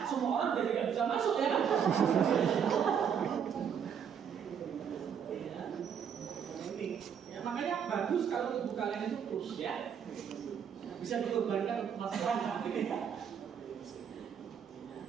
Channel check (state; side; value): quieter; left; 7.8 dB